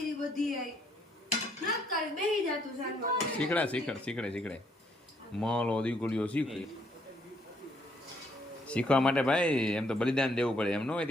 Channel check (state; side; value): normal; both; correlation 0.69